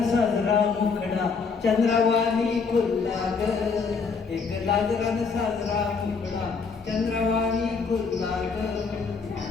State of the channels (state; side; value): quieter; right; 5.1 dB